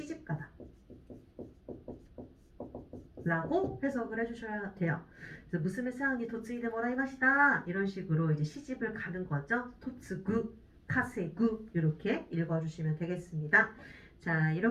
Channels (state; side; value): identical; both; correlation 1.00